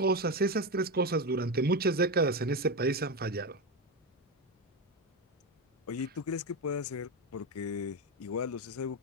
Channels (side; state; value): both; normal; correlation 0.14